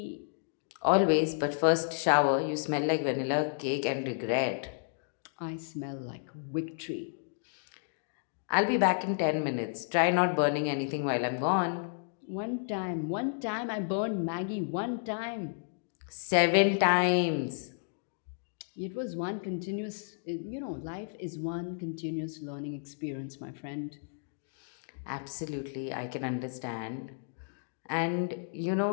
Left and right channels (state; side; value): silent; right; digital silence